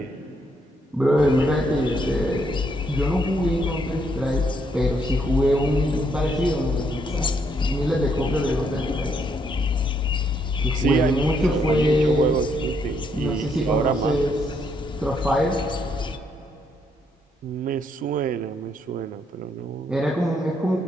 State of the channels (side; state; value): both; normal; correlation 0.73